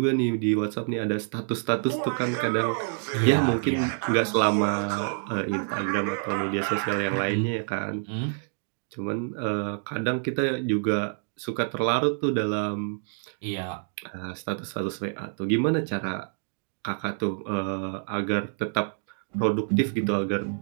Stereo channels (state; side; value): silent; left; 60 dB below the other